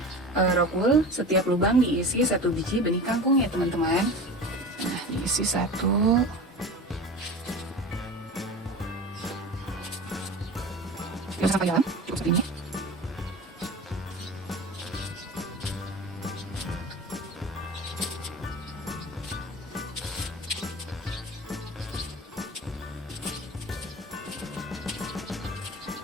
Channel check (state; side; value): normal; both; correlation 0.33